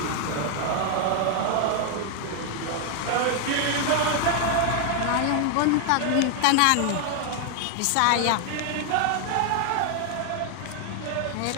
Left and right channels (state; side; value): different; both; correlation 0.00